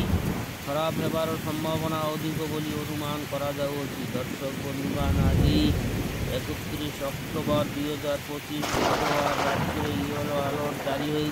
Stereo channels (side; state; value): both; identical; correlation 1.00